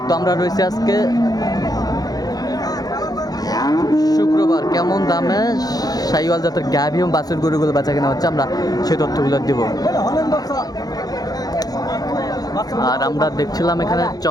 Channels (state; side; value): late; right; 0.19 ms